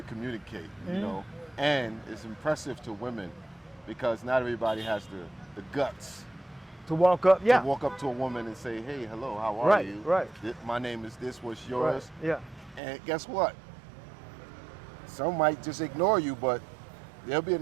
communicate, you know. And it's impressive to women because not everybody has the guts to walk up, to walk up to a woman and say, hey, hello, how are you? Right. My name is this, what's yours? Right. Yeah. And guess what? Some might just ignore you, but there'll be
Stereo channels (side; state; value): left; drops out; at 12.8 s